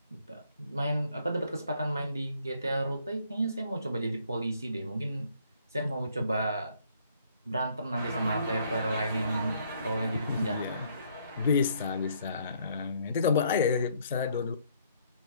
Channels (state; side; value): inverted; both; correlation -0.66